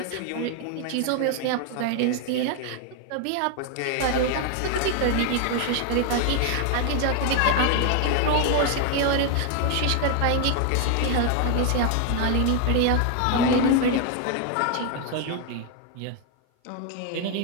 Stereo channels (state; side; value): different; both; correlation 0.01